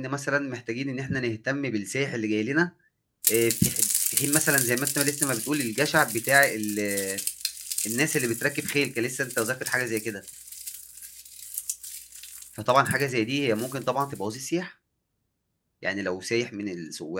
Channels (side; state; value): both; identical; correlation 1.00